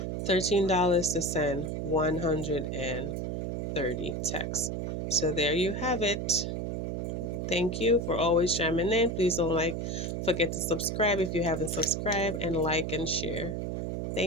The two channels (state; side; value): noise; right; hum, 2 dB below the sound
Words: $13 to send 130 texts. So there you have it. Thank you for always chiming in. Please don't forget to subscribe if you haven't subscribed, and like and share.